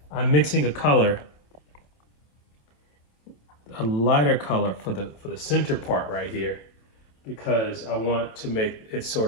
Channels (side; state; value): right; late; 27 ms